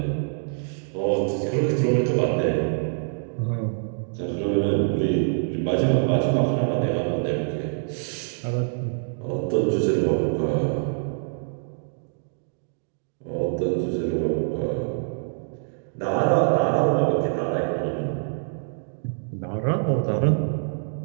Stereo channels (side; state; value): left; silent; digital silence